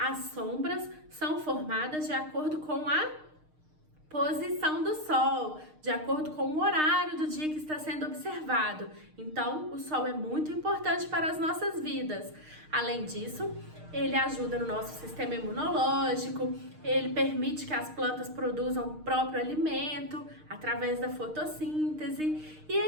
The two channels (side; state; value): left; late; 6.5 ms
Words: sombras são formadas de acordo com a posição do sol, de acordo com o horário do dia que está sendo observado. Então, o sol é muito importante para as nossas vidas. Além disso, ele ajuda no nosso sistema imunológico, ele permite que as plantas produzam o próprio alimento através da fotossíntese e